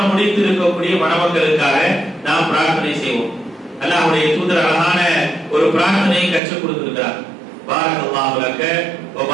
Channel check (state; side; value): drops out; left; at 6.4 s